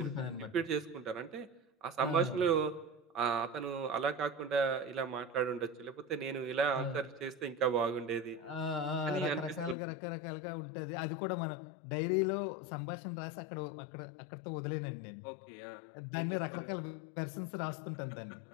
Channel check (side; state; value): right; drops out; at 9.8 s